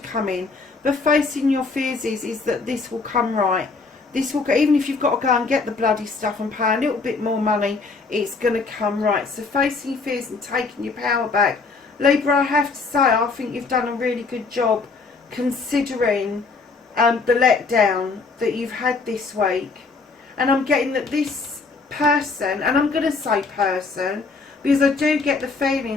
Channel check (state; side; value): quieter; right; 4.2 dB